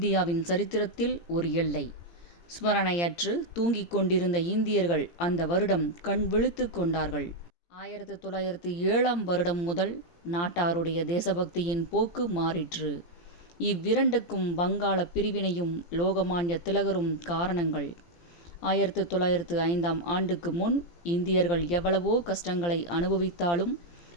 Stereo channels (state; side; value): late; right; 17 ms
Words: சரித்திரத்தில் ஒரு எல்லை. ஸ்மரணையற்று தூங்கிக் கொண்டிருந்த இந்தியர்கள் அந்த வருடம் கண் விழித்து கொண்டார்கள். 1907 முதல் நாட்டாருடைய தேசபக்தியின் போக்கு மாறிற்று. இவ்விரண்டுக்கும் வங்காள பிரிவினையும் லோகமான்ய திலகரும் காரணங்கள். 1905 முன் இந்தியர்கள் எவ்வளவோ கஷ்டங்களை அனுபவித்தாலும்